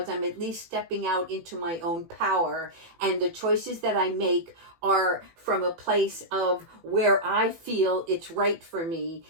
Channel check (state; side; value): late; left; 18 ms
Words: I'm at least stepping out into my own power. And the choices that I make are from a place of where I feel it's right for me